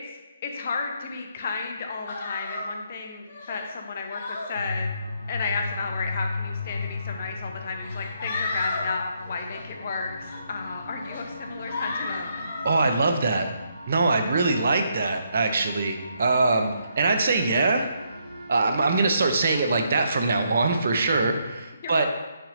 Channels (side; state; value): both; inverted; correlation -0.75